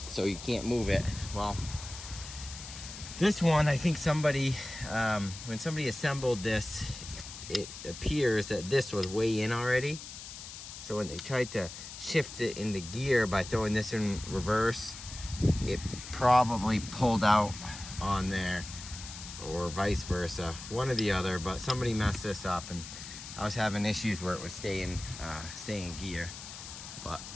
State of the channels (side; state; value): left; noise; hiss, 12 dB below the sound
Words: so you can't move it. Well, this one, I think somebody, when somebody assembled this, it appears that this was way in already. So when they tried to shift it into gear by throwing this in reverse, it probably pulled out on there, or vice versa, one or the other. But somebody messed this up, and I was having issues where it was stay in gear. But